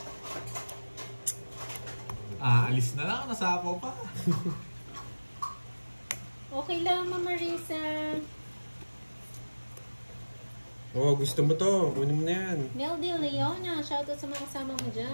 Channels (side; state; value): both; inverted; correlation -1.00